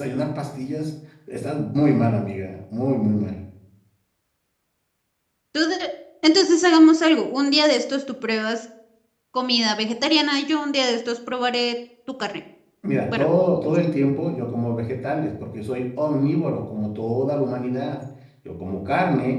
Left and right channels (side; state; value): both; identical; correlation 1.00